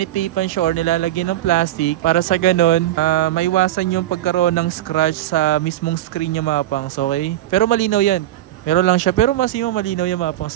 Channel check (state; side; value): quieter; left; 13.7 dB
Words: siya or nilalagyan ng plastic para sa ganun, maiwasan yung pagkaroon ng scratch sa mismong screen niya mga pangs, okay? Pero malinaw yan. Meron lang siya, pero mas yung malinaw yan mga